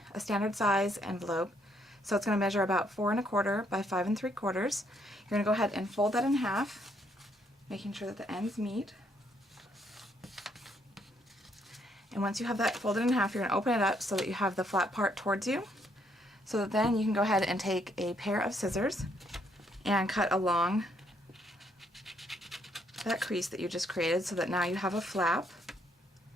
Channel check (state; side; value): normal; both; correlation 0.71